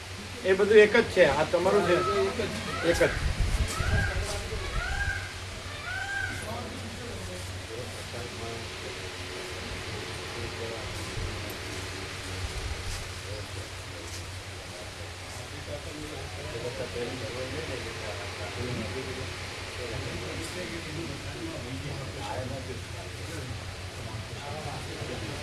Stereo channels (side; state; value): both; identical; correlation 1.00